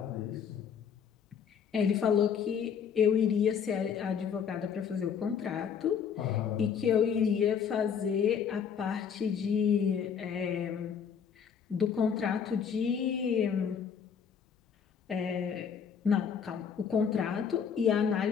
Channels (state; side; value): quieter; right; 7.2 dB